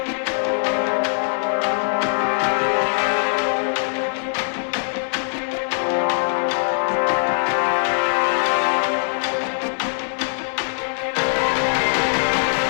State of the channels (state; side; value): silent; right; digital silence